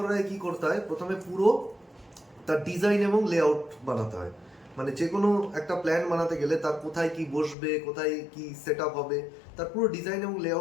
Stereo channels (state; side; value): drops out; right; at 7.6 s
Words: আগে কী করতে হয়? প্রথমে পুরো তার ডিজাইন এবং লেআউট বানাতে হয়। মানে যে কোনো একটা প্ল্যান বানাতে গেলে তার কোথায় কি বসবে, কোথায় কি সেট আপ হবে, তার পুরো ডিজাইন এবং